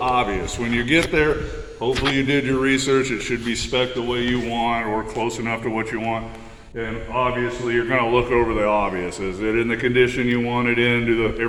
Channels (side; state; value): both; identical; correlation 1.00